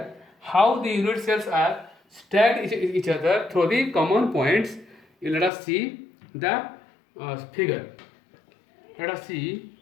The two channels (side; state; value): right; drops out; at 5.5 s